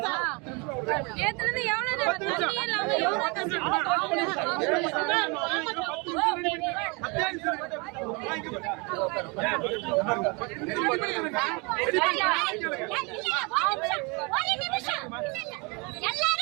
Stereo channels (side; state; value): left; quieter; 29.8 dB